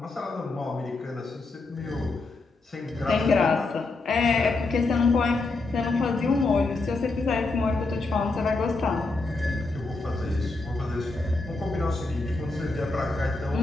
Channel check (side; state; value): right; quieter; 3.4 dB